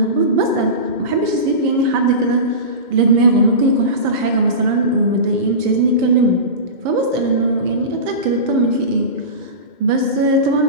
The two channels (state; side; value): late; left; 2.1 ms